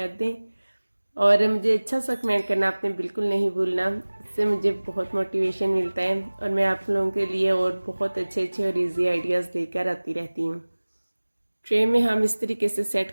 दें और मुझे अच्छा सा कमेंट करना आपने बिल्कुल नहीं भूलना, इससे मुझे बहुत मोटिवेशन मिलता है और मैं आप लोगों के लिए और बहुत अच्छे अच्छे और इजी आइडियाज़ लेकर आती रहती हूँ। ट्रे में हम इस तरीके से सेट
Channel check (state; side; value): inverted; both; correlation -1.00